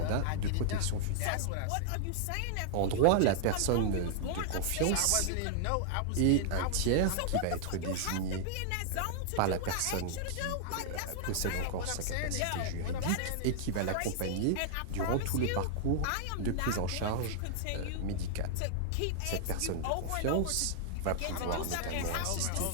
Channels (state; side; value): different; both; correlation -0.01